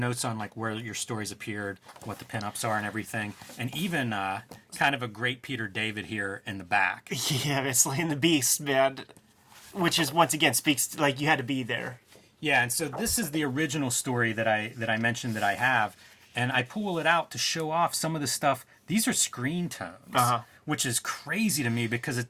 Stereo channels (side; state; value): both; identical; correlation 1.00